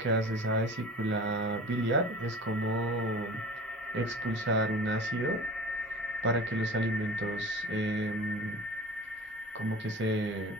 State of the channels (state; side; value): normal; both; correlation 0.39